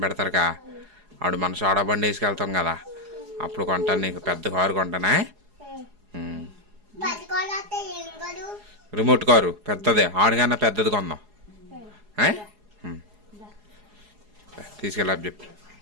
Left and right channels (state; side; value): late; left; 4.8 ms